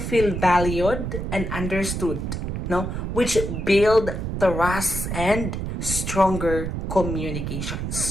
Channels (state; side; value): noise; right; rumble, 3 dB below the sound